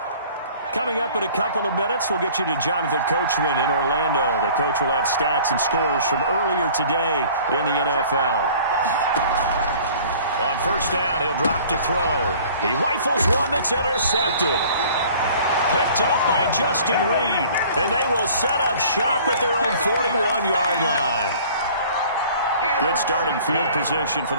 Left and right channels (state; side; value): inverted; both; correlation -0.49